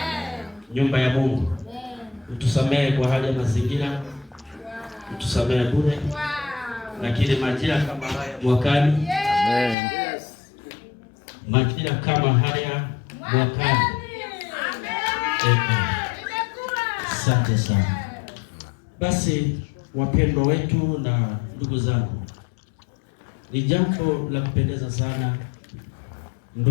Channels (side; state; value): right; drops out; at 9.8 s